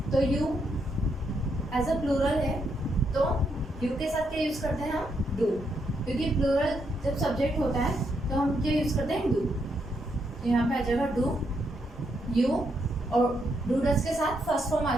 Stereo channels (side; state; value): both; normal; correlation 0.78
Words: तो यू एज अ प्लूरल है, तो यू के साथ क्या यूज करते हैं हम? डू, क्योंकि प्लूरल जब सब्जेक्ट होता है तो हम क्या यूज करते हैं? डू। तो यहाँ पे आ जाएगा डू, यू, और डू डज के साथ फर्स्ट फॉर्म